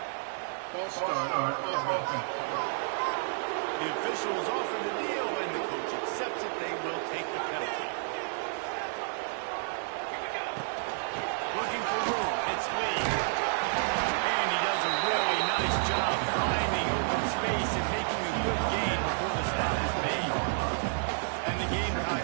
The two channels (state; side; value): silent; left; 57 dB below the other